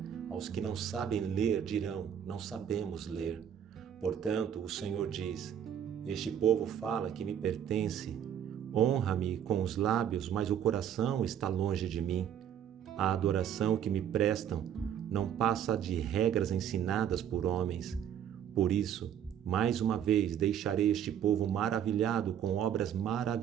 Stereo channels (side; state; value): left; quieter; 9.4 dB